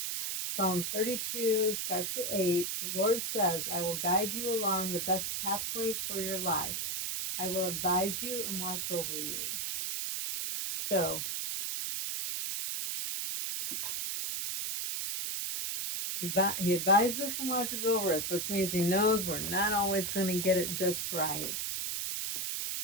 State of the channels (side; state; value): right; noise; hiss, 2 dB below the sound